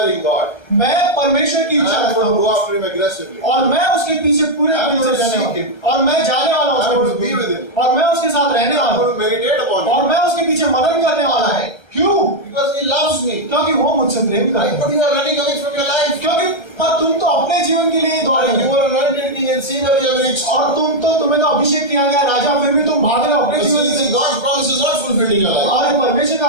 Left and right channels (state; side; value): late; right; 1.3 ms